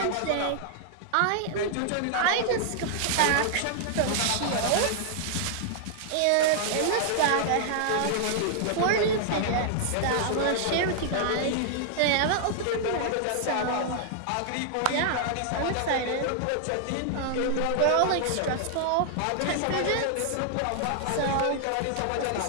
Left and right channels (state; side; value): different; both; correlation -0.01